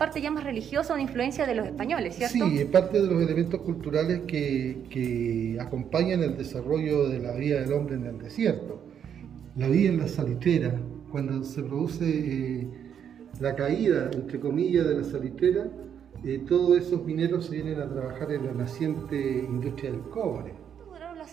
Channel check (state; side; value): quieter; left; 8.5 dB